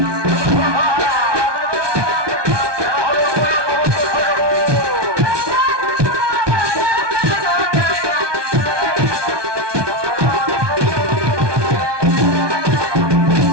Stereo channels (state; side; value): late; left; 1.2 ms